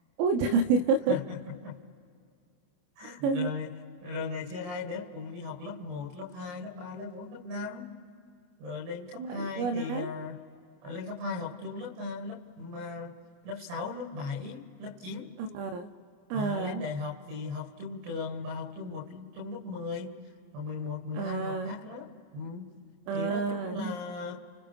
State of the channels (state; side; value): late; left; 28 ms